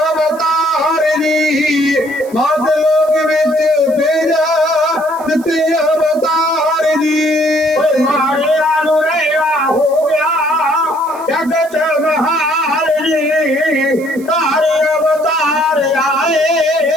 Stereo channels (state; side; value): noise; right; hiss, 23 dB below the sound